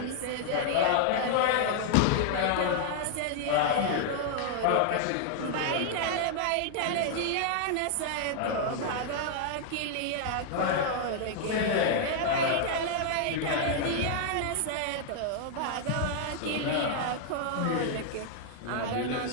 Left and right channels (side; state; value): both; different; correlation 0.00